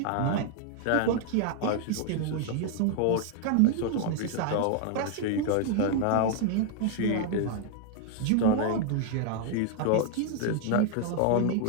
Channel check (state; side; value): different; both; correlation 0.00